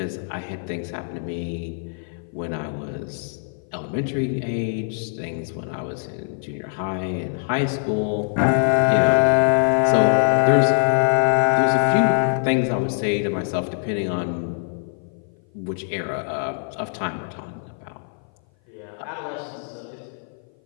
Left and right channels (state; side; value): silent; right; 57 dB below the other